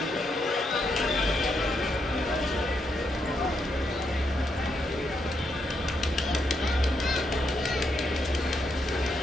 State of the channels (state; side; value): normal; both; correlation 0.80